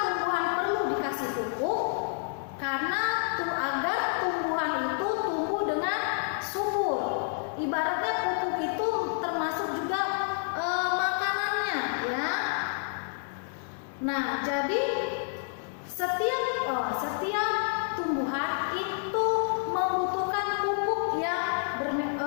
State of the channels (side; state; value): right; silent; 58 dB below the other